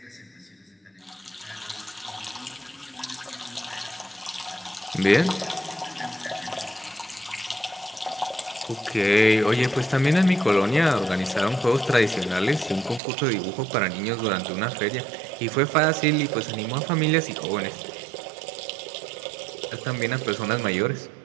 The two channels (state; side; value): drops out; left; at 13.0 s